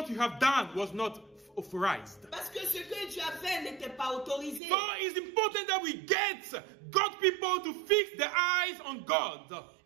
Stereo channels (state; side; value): drops out; left; at 4.6 s